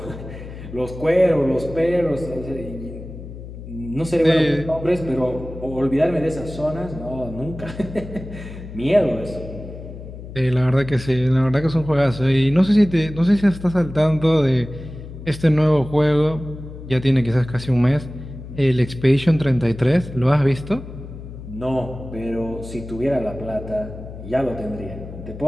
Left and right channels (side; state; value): left; noise; hum, 12 dB below the sound